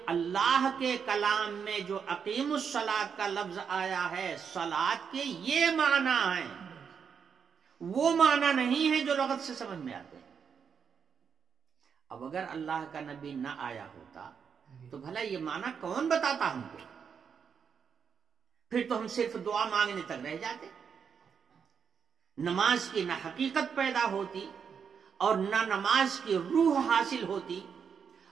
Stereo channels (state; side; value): quieter; left; 6.8 dB